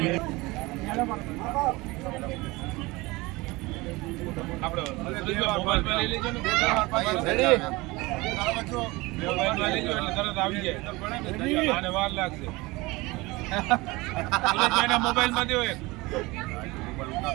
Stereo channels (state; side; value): quieter; left; 22.5 dB